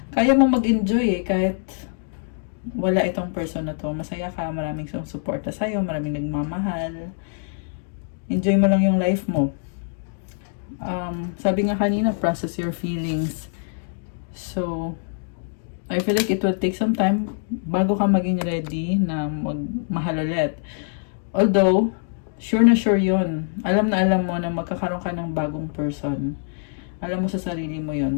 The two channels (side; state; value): right; silent; digital silence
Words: kaya mo mag-enjoy eh, kahit wala itong person na to. Masaya ka, maraming suporta sa'yo, maraming nagmamahal. Enjoy mo lang yung life mo. Sabi nga kanina, process your feelings. So, I feel like it will take some time bago ka maging ready na magmahal ulit. Although, sure na sure yun. Alam na alam mo na magkakaroon ka ng bagong person. Alam mo sa sarili mo